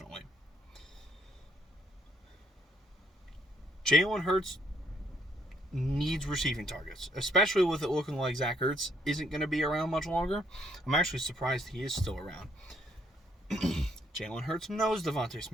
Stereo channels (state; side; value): normal; both; correlation 0.69